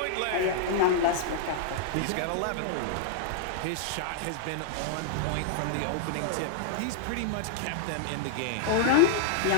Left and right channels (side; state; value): both; different; correlation -0.01